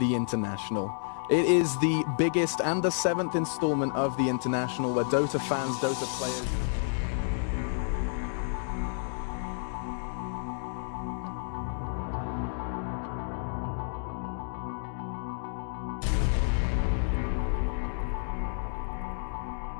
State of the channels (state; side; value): silent; right; digital silence